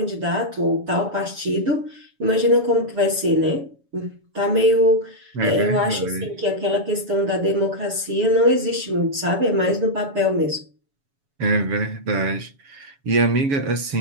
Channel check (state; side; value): late; left; 7.1 ms